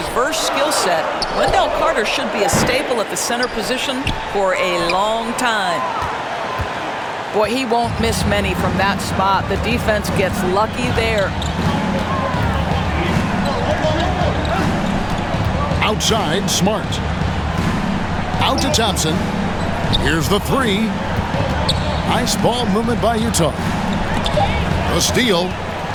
skill set, Wendell Carter should be a staple at the center position for a long time. Boy, he won't miss many from that spot. The defense gets lucky there. Outside, Smart. Out to Thompson. Here's the 3. Nice ball movement by Utah. A steal.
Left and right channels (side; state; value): both; identical; correlation 1.00